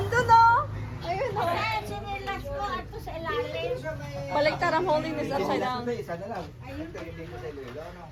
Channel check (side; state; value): both; identical; correlation 1.00